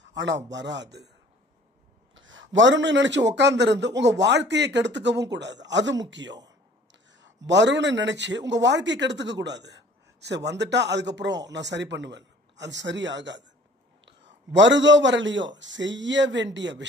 ஆனா வராது. வரும்னு நினைச்சு உட்கார்ந்து உங்க வாழ்க்கையை கெடுத்துக்கவும் கூடாது, அது முக்கியம். வரும்னு நினைச்சு உங்க வாழ்க்கையை கெடுத்துக்க கூடாது. சரி வந்துட்டா அதுக்கப்புறம் நான் சரி பண்ணுவேன், அது சரி ஆகாது. வருதோ வரலையோ செய்ய வேண்டிய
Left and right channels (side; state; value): both; normal; correlation 0.51